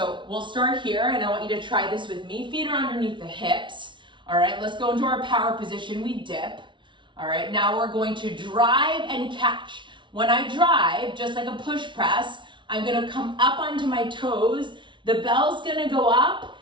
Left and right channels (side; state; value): left; late; 0.24 ms